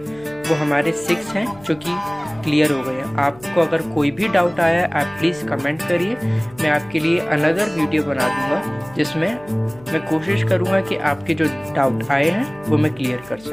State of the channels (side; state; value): left; noise; hum, 24 dB below the sound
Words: वो हमारे 6 हैं जो कि क्लियर हो गए। आपको अगर कोई भी डाउट आया है आप प्लीज़ कमेंट करिए, मैं आपके लिए अनदर वीडियो बना दूंगा जिसमें मैं कोशिश करूंगा कि आपके जो डाउट आए हैं वो मैं क्लियर कर